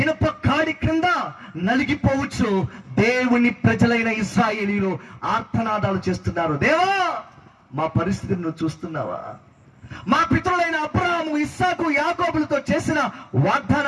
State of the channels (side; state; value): both; identical; correlation 1.00